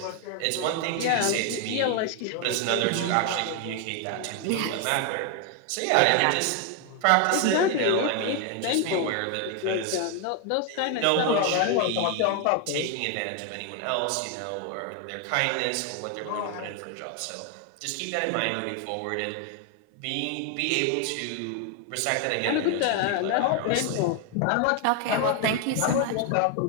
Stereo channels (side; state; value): both; different; correlation 0.01